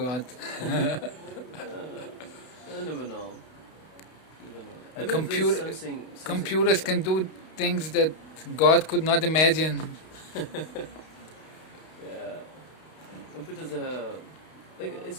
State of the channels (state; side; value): late; right; 32 ms